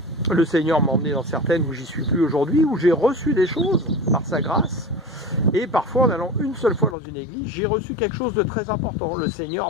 le Seigneur m'a emmené dans certaines où j'y suis plus aujourd'hui, où j'ai reçu des choses par sa grâce, et parfois en allant une seule fois dans une église, j'ai reçu quelque chose de très important, le Seigneur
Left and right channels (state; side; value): drops out; right; at 7.0 s